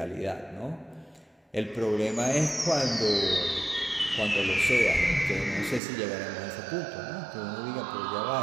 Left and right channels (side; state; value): left; drops out; at 5.8 s